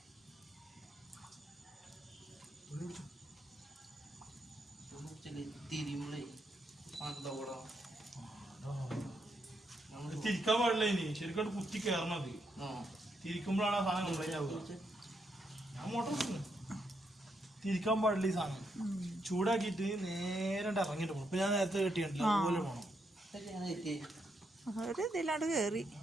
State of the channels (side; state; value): both; normal; correlation 0.79